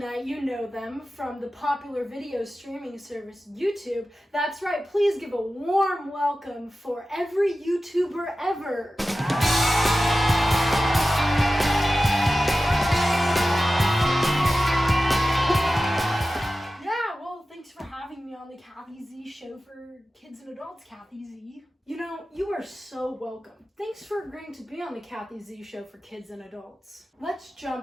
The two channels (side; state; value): both; normal; correlation 0.94